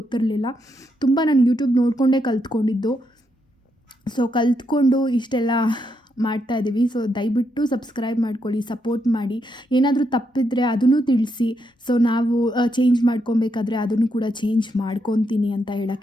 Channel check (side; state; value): both; normal; correlation 0.80